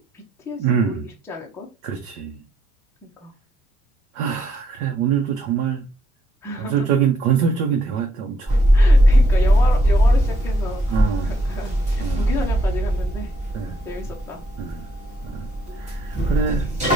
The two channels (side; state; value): both; normal; correlation 0.74